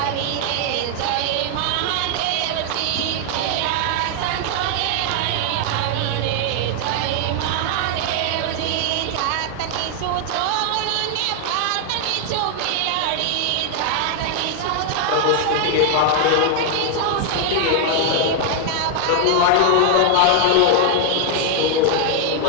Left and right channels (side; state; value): both; different; correlation 0.00